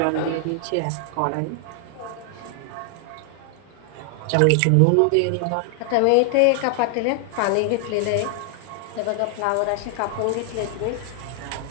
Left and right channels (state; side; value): different; both; correlation 0.00